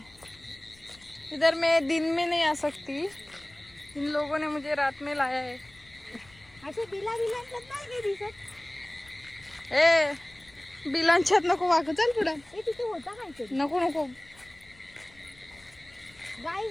इधर मैं दिन में नहीं आ सकती. इन लोगों ने मुझे रात में लाया है. असे बिला बिलांच्यात नाही काही दिसत. ए बिलांच्यात नको वाकू. चल पुढे. हे तिथे होता काहीतरी. नको नको.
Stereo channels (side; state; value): left; noise; rumble, 26 dB below the sound